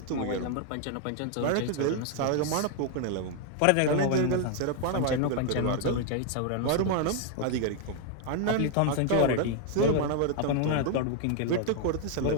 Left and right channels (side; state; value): both; different; correlation 0.00